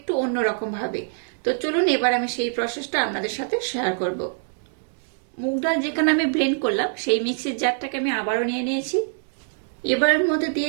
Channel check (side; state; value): left; silent; digital silence